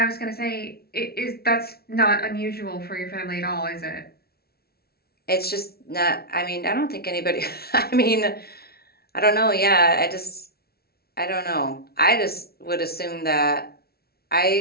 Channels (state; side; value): late; right; 0.45 ms